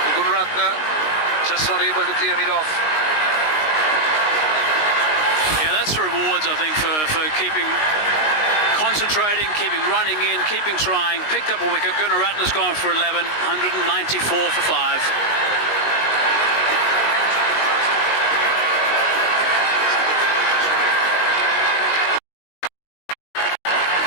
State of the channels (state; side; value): late; right; 19 ms